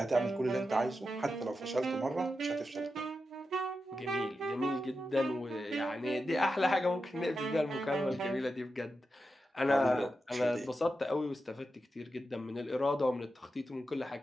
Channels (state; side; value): normal; both; correlation 0.89